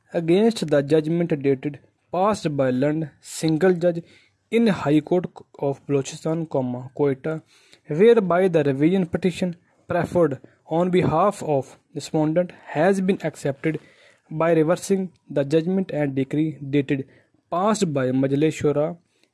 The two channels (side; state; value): both; identical; correlation 1.00